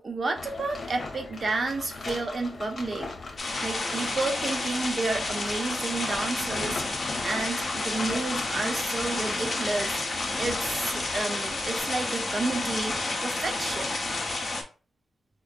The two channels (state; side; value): normal; both; correlation 0.87